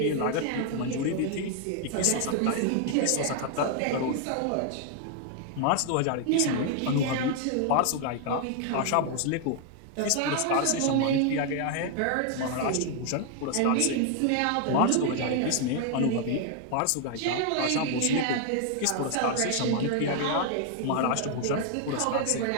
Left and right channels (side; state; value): both; different; correlation 0.00